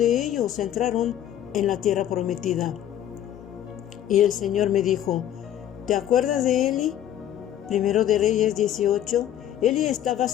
ellos entraron en la tierra prometida. Y el Señor me dijo, ¿te acuerdas de Eli? Primero de Reyes 18. Eli estaba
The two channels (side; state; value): right; quieter; 11.3 dB